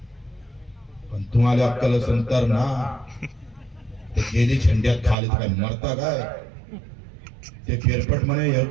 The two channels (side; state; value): left; drops out; at 5.2 s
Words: पण तुम्हाला अक्कल असेल तर ना, ते गेली झंड्यात खाली काय मरता काय ते फेरफट म्हणे